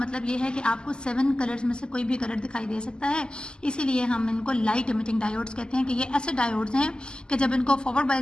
ये है कि आपको 7 कलर्स में से कोई भी कलर दिखाई दे सकता है, इसीलिए हम इनको लाइट एमिटिंग डायोड्स कहते हैं कि ये ऐसे डायोड्स हैं कि जब इनको फॉरवर्ड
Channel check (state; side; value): late; right; 0.047 ms